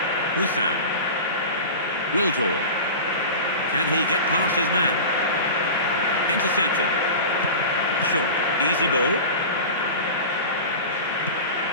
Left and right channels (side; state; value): both; inverted; correlation -0.32